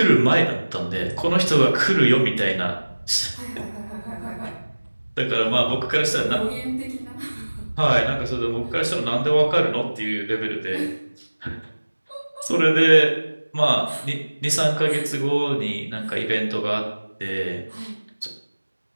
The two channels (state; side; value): inverted; both; correlation -1.00